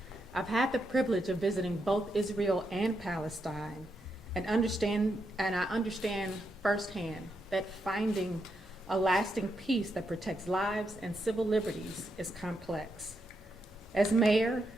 I've had the privilege of visiting both Israel and Palestine and I understand firsthand that finding a lasting peace that protects lives and civil liberties is complex. As mayor,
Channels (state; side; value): normal; both; correlation 0.82